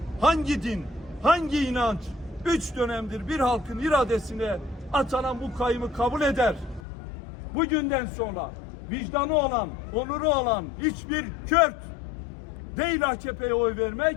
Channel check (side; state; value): right; drops out; at 6.8 s